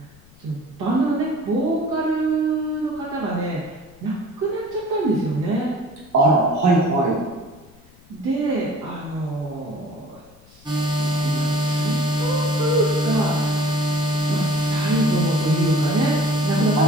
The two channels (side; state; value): left; noise; rumble, 26 dB below the sound